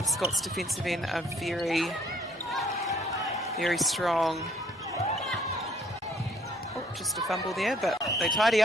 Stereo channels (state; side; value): normal; both; correlation 0.61